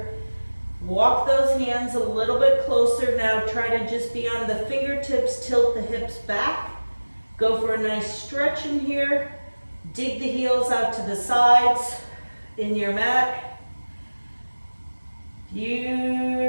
Walk those hands a little bit closer. Now try to just be on the fingertips, tilt the hips back. Go for a nice stretch in here. Dig the heels out to the sides in your mat.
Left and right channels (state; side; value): inverted; both; correlation -1.00